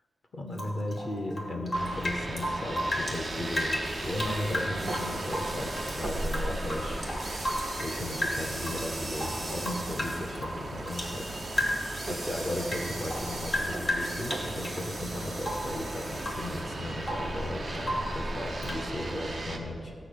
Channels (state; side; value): normal; both; correlation 0.90